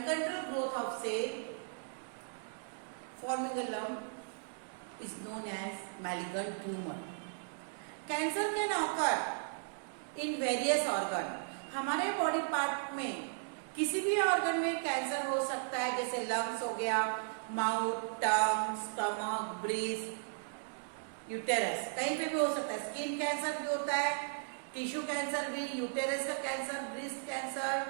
growth of cell forming a lump is known as malignant tumour. Cancer can occur in various organ. हमारे बॉडी पार्ट में किसी भी ऑर्गन में कैंसर हो सकता है, जैसे लंग्स हो गया, माउथ, टंग, स्टमक, ब्रीस्ट, यूटेरस, कहीं पे भी हो सकता है। स्किन कैंसर भी होता है, टिश्यू कैंसर भी, यूटेरस का cancer, breast cancer,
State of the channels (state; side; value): silent; left; digital silence